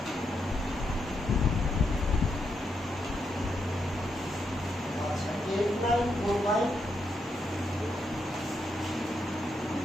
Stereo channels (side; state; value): both; normal; correlation 0.81